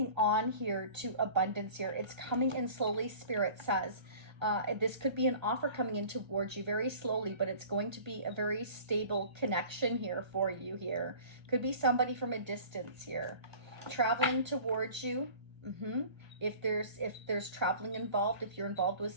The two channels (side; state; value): left; late; 1.3 ms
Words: on here to abundance here. It's coming in slowly, Spirit says. This could be an offer coming in towards you very slowly, but it's going to be a very stable connection here for you here. Could be somebody from a distance here. Traveling towards you. If there's traveling involved, if you're involved with